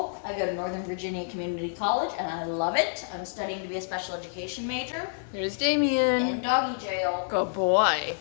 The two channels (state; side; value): silent; right; digital silence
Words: I go to Northern Virginia Community College, and I love it. I'm studying to be a special education major Here's Damien. in doggy jail. Good boy.